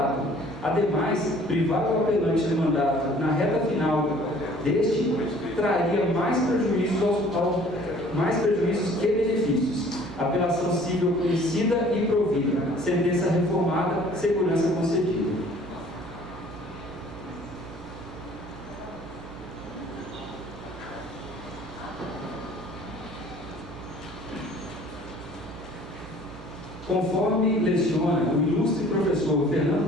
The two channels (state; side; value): noise; right; hum, 15 dB below the sound